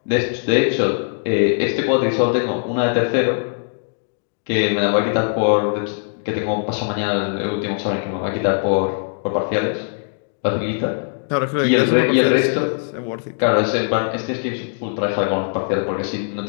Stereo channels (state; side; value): silent; right; digital silence